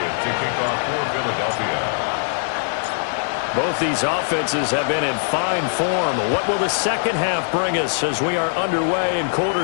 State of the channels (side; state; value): right; silent; 65 dB below the other